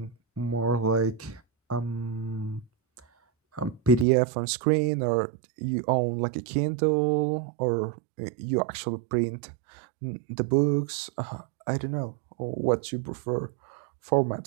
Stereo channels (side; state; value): left; drops out; at 4.0 s